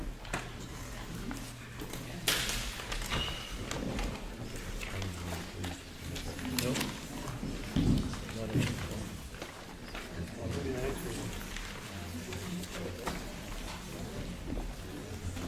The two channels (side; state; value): both; identical; correlation 1.00